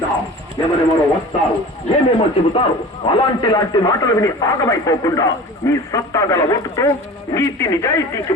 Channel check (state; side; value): normal; both; correlation 0.38